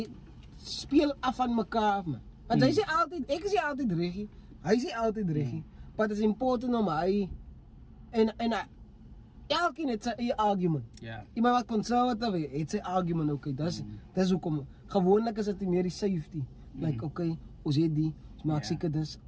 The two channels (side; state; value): both; identical; correlation 1.00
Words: speel af van mekaar af man. Want hy sê altyd, ek sê altyd reggie, hy sê altyd reggie, but it's important om hy, en elkeen het sy eie argument. Iemand wat conservative het sy argument, okay, dis hoekom, gewoonlik is dit meer die safety, like, okay, ons het die, ons maak seker dis